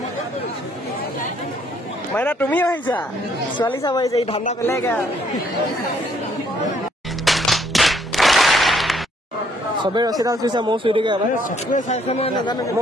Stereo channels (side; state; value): both; normal; correlation 0.67